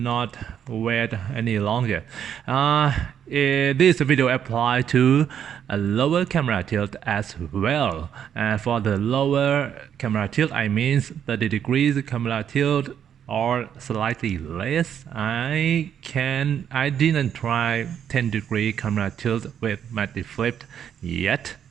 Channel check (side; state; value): left; quieter; 8.9 dB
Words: wait any longer. This video applies to a lower camera tilt as well. For the lower camera tilt, I mean 30 degrees camera tilt or slightly less. I didn't try 10-degree camera tilt with MattyFlip yet,